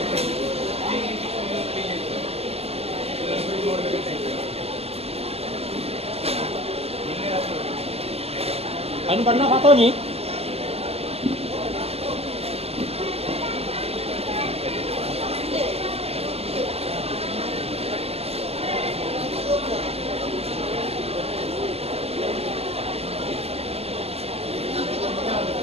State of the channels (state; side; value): late; left; 0.29 ms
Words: Anh bắn nó khá to nhỉ?